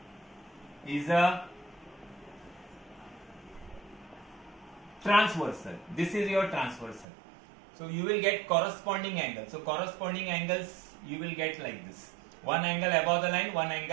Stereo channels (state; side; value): drops out; left; at 7.1 s